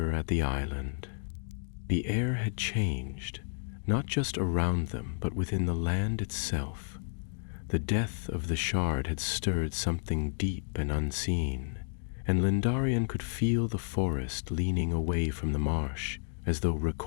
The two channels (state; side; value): silent; right; digital silence